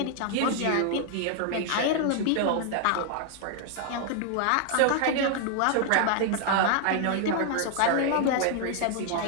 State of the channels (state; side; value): different; both; correlation 0.00